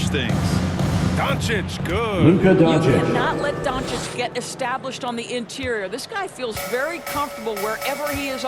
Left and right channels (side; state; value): both; identical; correlation 1.00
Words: things. Doncic, good. Luka You Doncic. cannot let Doncic get established on the interior. This guy feels very comfortable wherever he is